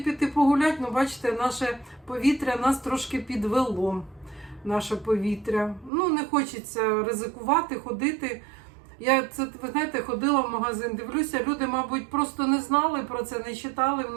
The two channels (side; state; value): left; drops out; at 5.9 s